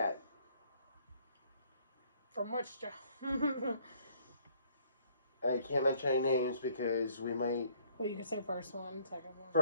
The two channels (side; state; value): both; inverted; correlation -0.62